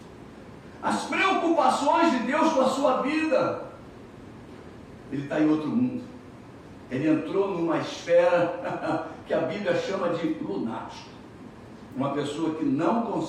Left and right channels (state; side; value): identical; both; correlation 1.00